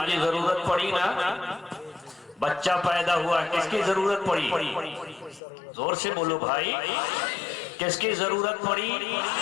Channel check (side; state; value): right; drops out; at 5.4 s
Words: की जरूरत पड़ी ना, बच्चा पैदा हुआ, किसकी जरूरत पड़ी? जोर से बोलो भाई, किसकी जरूरत पड़ी?